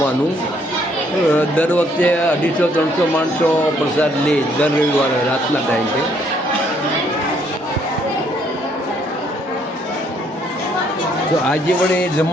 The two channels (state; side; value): normal; both; correlation 0.67